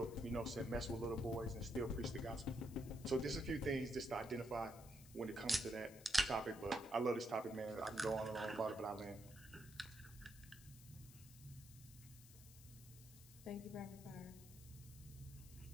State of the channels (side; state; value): left; noise; hiss, 18 dB below the sound